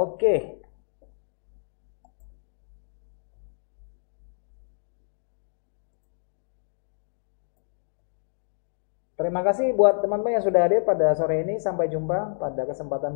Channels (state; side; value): silent; right; digital silence